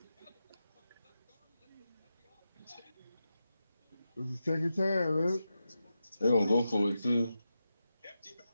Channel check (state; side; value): inverted; both; correlation -0.90